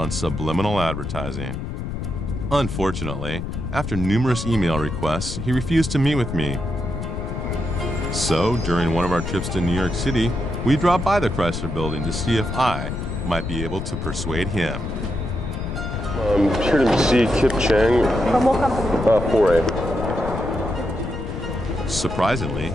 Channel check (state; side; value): noise; left; rumble, 5 dB below the sound